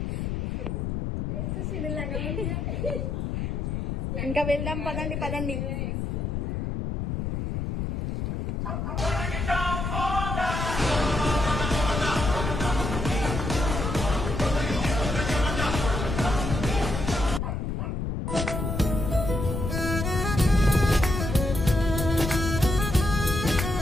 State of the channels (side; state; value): left; noise; rumble, 2 dB below the sound